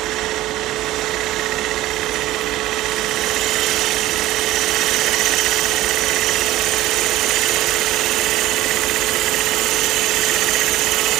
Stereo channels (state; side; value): quieter; left; 15.7 dB